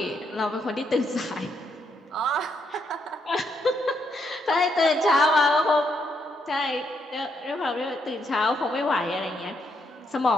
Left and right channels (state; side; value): normal; both; correlation 0.77